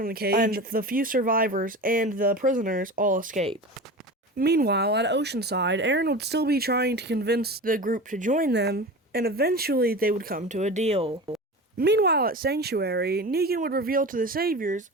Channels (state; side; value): normal; both; correlation 0.31